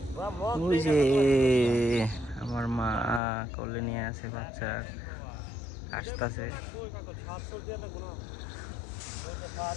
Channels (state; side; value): drops out; right; at 3.2 s